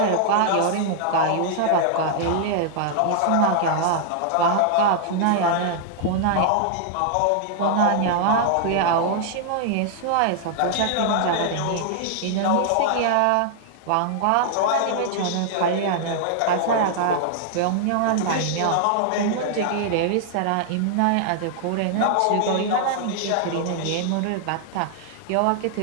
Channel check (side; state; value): both; different; correlation -0.01